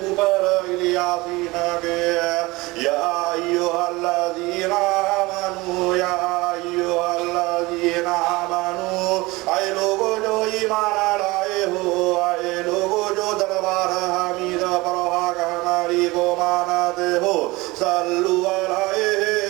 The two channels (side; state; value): left; quieter; 22.0 dB